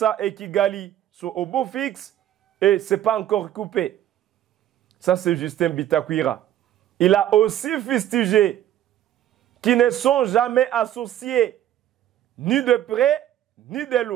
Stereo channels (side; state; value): left; quieter; 11.9 dB